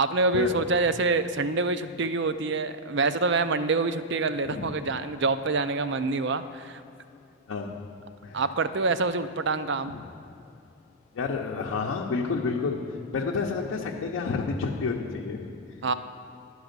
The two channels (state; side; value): normal; both; correlation -0.09